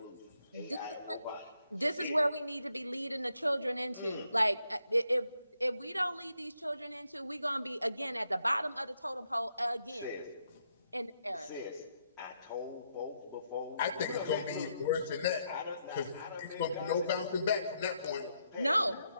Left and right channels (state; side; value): inverted; both; correlation -0.78